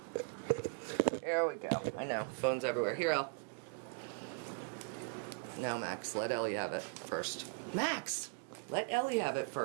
Here we go. I know. Phones everywhere. Here, Elle. Now, Max, let Ellie have it first. Max! Let Ellie have it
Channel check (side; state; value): left; quieter; 33.5 dB